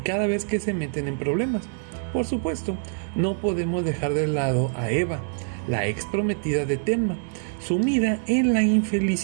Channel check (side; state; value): left; silent; digital silence